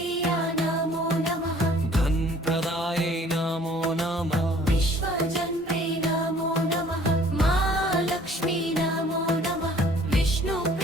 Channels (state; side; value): normal; both; correlation 0.54